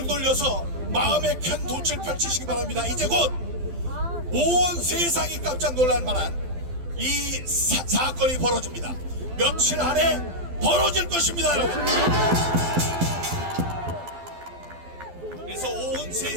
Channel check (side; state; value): left; late; 12 ms